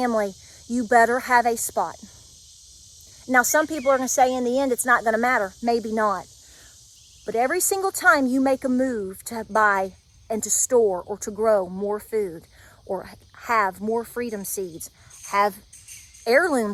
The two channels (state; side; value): identical; both; correlation 1.00